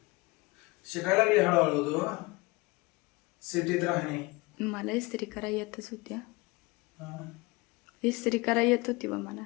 शिकायला लागली हळूहळू तू सिटीत राहणे. मला इस्त्री करा येतच होत्या. हा. इस्त्री करा येत होती बा मला.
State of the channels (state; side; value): quieter; right; 24.0 dB